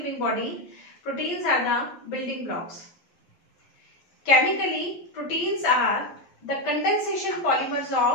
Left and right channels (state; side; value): late; right; 11 ms